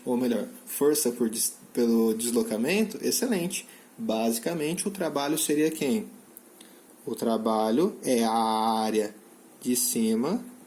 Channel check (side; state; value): both; identical; correlation 1.00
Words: Ou melhor, força pelo deslocamento, excelente. Basicamente o trabalho seria quem? O trabalho é a área de cima